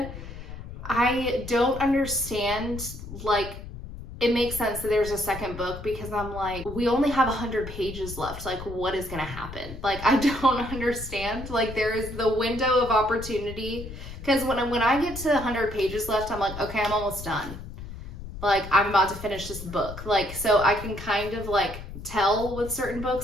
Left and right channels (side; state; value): left; noise; rumble, 11 dB below the sound